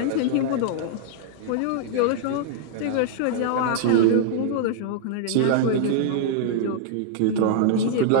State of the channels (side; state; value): both; different; correlation -0.01